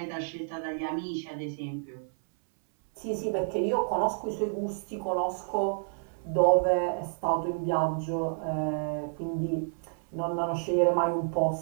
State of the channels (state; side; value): silent; left; 58 dB below the other